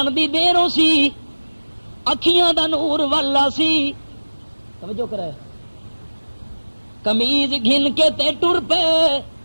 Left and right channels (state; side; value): inverted; both; correlation -1.00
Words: دی دیروں سی اکھیاں دا نور والا سی توجہ کرے قمیض گھن کے تے ٹر پے